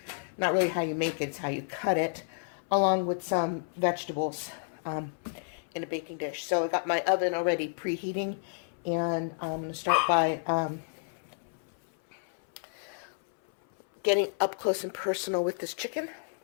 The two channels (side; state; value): right; silent; 57 dB below the other